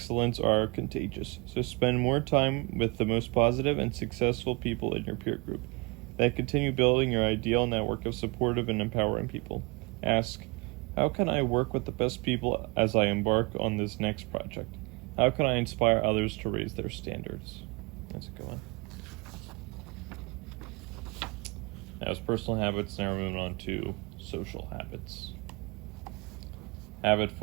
are contagious, so spend more time with the most positive and successful people in your peer group. Then continue building your ideal network of supportive and empowering people. Ask, how can I work with the best people as I embark on this next project? How can I inspire others to raise their standards? That's a good one. That was personal habits. Now we're moving on to social habits. Habit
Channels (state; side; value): quieter; left; 28.2 dB